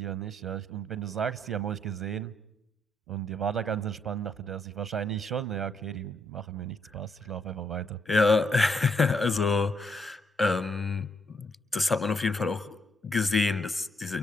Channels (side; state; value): both; normal; correlation 0.74